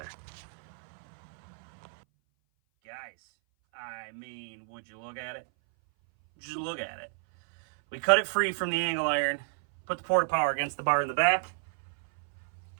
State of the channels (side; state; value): left; silent; 57 dB below the other